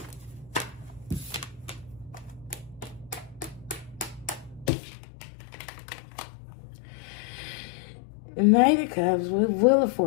Knight of Cups with Wheel of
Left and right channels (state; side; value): drops out; right; at 4.7 s